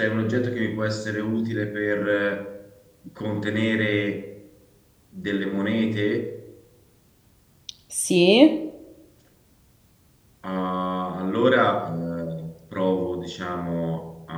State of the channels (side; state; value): both; identical; correlation 1.00